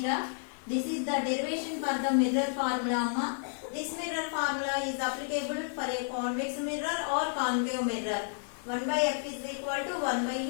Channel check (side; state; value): right; silent; digital silence